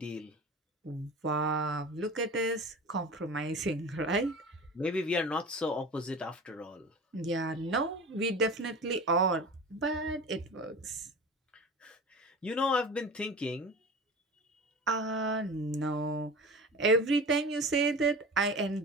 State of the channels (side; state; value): both; normal; correlation 0.35